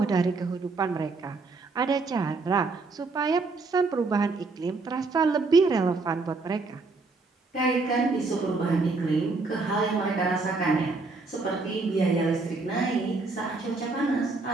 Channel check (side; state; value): left; quieter; 3.8 dB